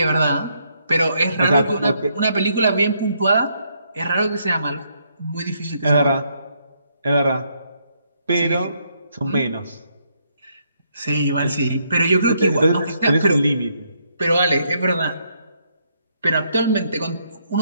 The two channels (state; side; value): inverted; both; correlation -0.74